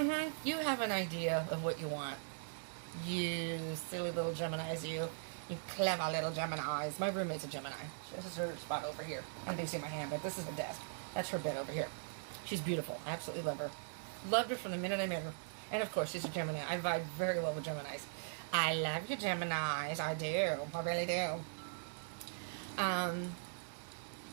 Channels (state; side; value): silent; left; digital silence